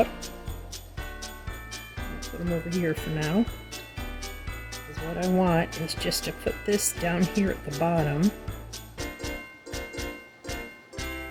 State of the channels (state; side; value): identical; both; correlation 1.00